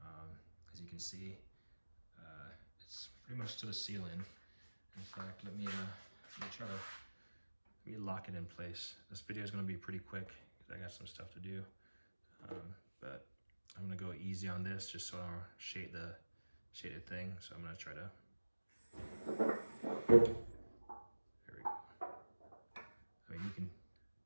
As you can see, it's pretty much to the ceiling. In fact, let me lock it in place. This video is going to be pretty quick because I got some stuff to do. But I'm gonna go easy on this just so I don't shade the thing. So I'm gonna try to. There we go. I mean, you can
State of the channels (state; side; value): inverted; both; correlation -1.00